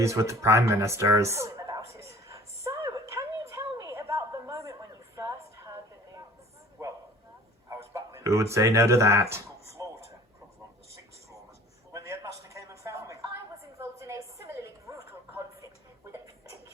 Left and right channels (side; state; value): both; normal; correlation 0.48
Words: with the Prime Ministers. overjoyed about it. So, can you tell me about the moment when you first heard the news? Well, I was battling Who would say no to that? floor temper on the 6th floor when the headmaster came and found me. I was involved in a similarly brutal conflict with a